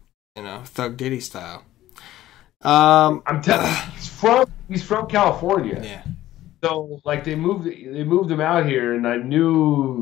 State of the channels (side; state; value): right; quieter; 14.5 dB